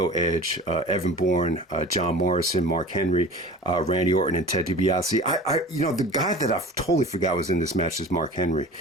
Edge, Evan Bourne, John Morrison, Mark Henry, Randy Orton, and Ted DiBiase. The guy that I totally forgot was in this match is Mark Henry.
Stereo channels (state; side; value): normal; both; correlation 0.39